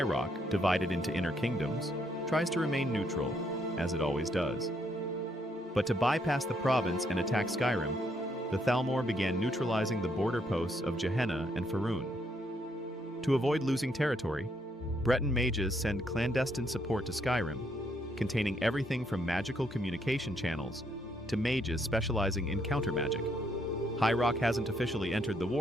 Rock, divided into inner kingdoms, tries to remain neutral, as it always does. But to bypass the province and attack Skyrim, the Thalmor began neutralizing the border posts of Gehenna and Faerun. To avoid losing territory, Breton mages send clandestine support to Skyrim, containing everything from magical communication channels to mages specializing in counter magic. High Rock hasn't officially entered the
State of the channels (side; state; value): both; normal; correlation 0.73